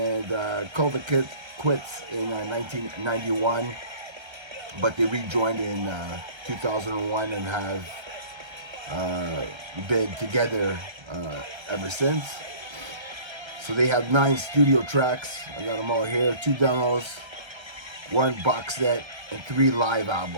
called the quits in 1991, but they rejoined in 2001 and have been together ever since. So they have 9 studio tracks. I got them all here. 2 demos, 1 box set, and 3 live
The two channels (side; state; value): left; late; 1.3 ms